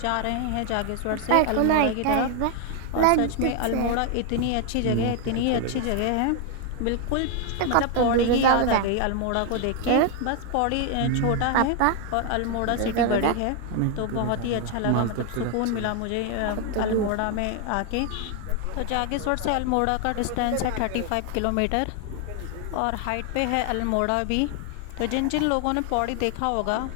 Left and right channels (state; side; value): different; both; correlation 0.00